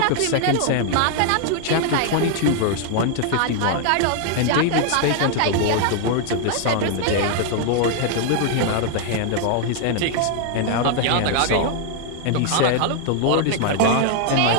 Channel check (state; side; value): different; both; correlation 0.00